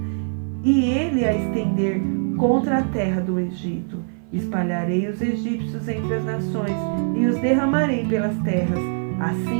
e ele a estender contra a terra do Egito. Espalharei os egípcios entre as nações e os derramarei pelas terras.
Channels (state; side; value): silent; left; 57 dB below the other